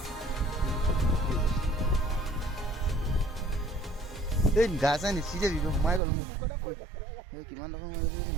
এই গা চা নিচিতে দিব সোমাই গ'ল মোক এই কিমান টকা সোমাই গৈছে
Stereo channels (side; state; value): left; drops out; at 6.0 s